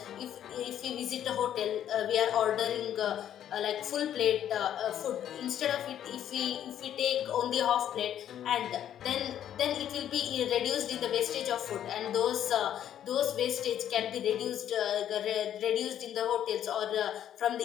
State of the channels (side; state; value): right; quieter; 10.5 dB